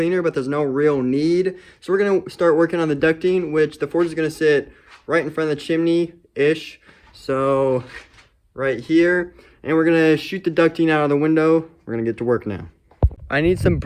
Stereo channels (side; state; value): both; identical; correlation 1.00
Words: but there's no real need. So we're gonna start working on the ducting, which the forge is gonna sit right in front of the chimney-ish. So right here, and we're gonna shoot the ducting out of the window. We're gonna get to work now. I need some